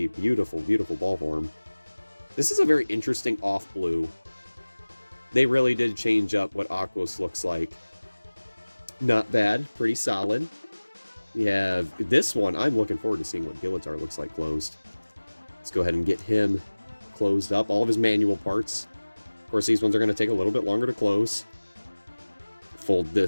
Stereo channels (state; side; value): inverted; both; correlation -1.00